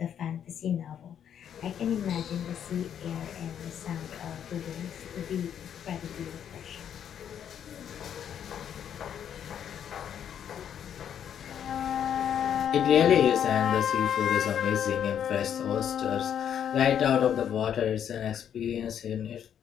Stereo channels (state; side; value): quieter; right; 9.1 dB